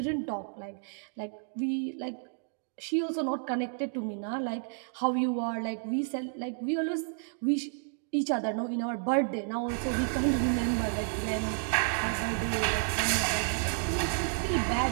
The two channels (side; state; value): left; silent; digital silence